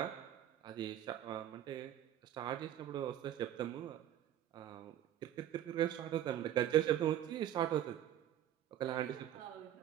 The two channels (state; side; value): quieter; left; 11.5 dB